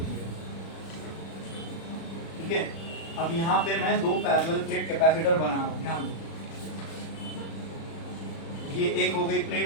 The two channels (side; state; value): right; late; 36 ms